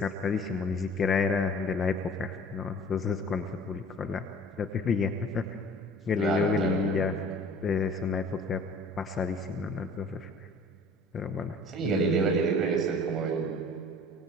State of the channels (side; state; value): both; normal; correlation 0.47